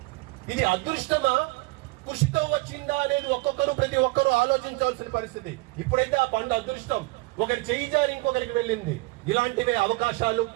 ఇది అదృష్టమా, కృషితో వచ్చిందా అనేది ప్రతి ఒక్కరూ ఆలోచించాల్సిన పరిస్థితి. ఇప్పుడైతే ఆ పండు అదృష్టం ఒకరి చేయి జారి ఇంకొకరికి వెళ్ళింది. ఇలాంటివే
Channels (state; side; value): quieter; left; 24.2 dB